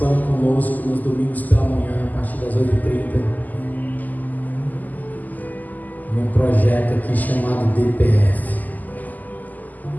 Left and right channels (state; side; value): late; right; 0.082 ms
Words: conosco nos domingos pela manhã, a partir das 8h30, num projeto aqui chamado DPF,